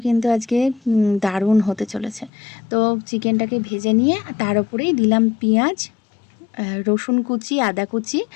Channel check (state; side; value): drops out; right; at 2.3 s